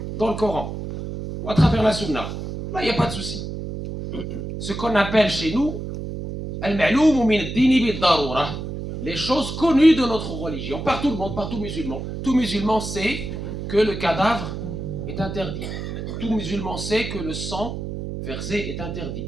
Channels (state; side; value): noise; right; hum, 6 dB below the sound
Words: dans le Coran ou à travers la Sunna. Là, il n'y a pas de souci. Ce qu'on appelle chez nous al-ma'loum min ad-din bid-darura, les choses connues de notre religion, par tout le monde, par tout musulman. Tout musulman sait que le cadavre est interdit. Tout musulman sait que le sang versé est